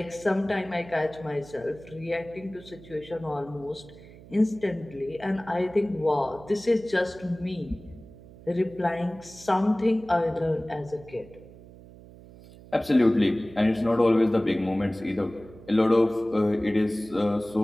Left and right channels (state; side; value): noise; right; hum, 20 dB below the sound